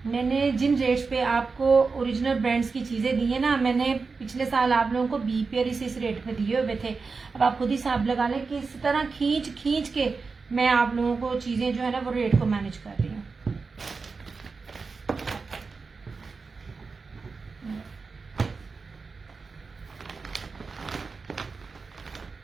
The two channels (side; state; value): left; quieter; 4.5 dB